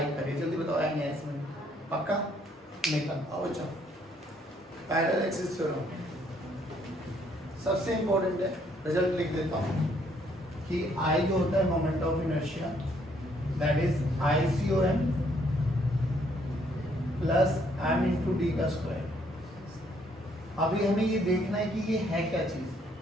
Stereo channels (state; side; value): normal; both; correlation 0.67